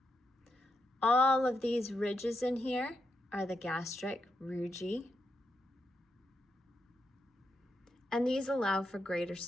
All of these ridges in here are the gastric rugae, and these allow for greater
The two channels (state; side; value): normal; both; correlation 0.83